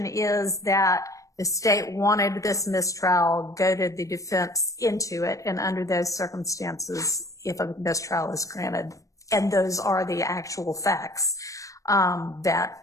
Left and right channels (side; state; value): right; late; 0.16 ms